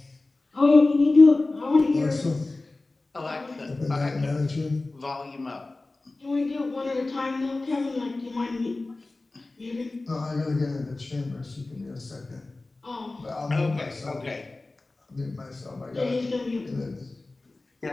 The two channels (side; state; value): right; quieter; 3.2 dB